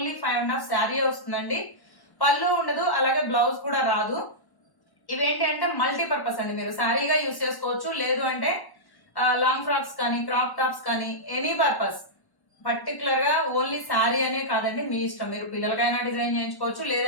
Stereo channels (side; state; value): right; late; 1.1 ms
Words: 5.5 శారీ వస్తుందండి. పళ్ళు ఉండదు, అలాగే బ్లౌజ్ కూడా రాదు. ఇవేంటి అంటే మల్టీపర్పస్ అండి. మీరు శారీగా యూజ్ చేసుకోవచ్చు, లేదు అంటే లాంగ్ ఫ్రాక్స్ కానీ క్రాప్ టాప్స్ కానీ ఎనీ పర్పస్. పర్టికులర్ గా ఓన్లీ శారీ అనే కాదండి, మీ ఇష్టం. మీరు పిల్లలకైనా డిజైన్ చేయించుకోవచ్చు,